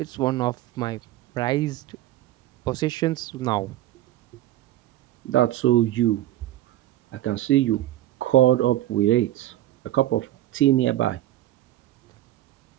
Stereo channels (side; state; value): left; quieter; 14.5 dB